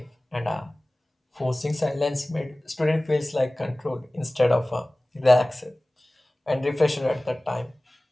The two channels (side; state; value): both; normal; correlation 0.98